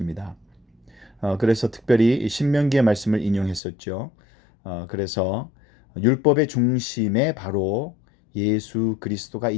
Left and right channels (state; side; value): drops out; right; at 3.6 s